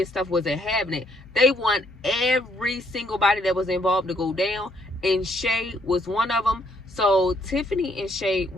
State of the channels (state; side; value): normal; both; correlation 0.69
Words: stuff wasn't having it. They want every single body that was involved to go down, and Shay was one of them. So Tiffany and Shay